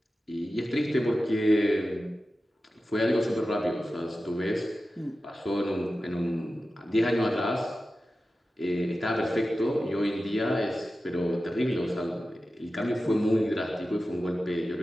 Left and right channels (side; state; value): both; normal; correlation 0.93